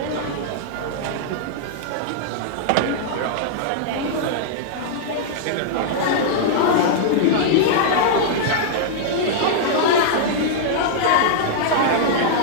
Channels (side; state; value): both; different; correlation -0.02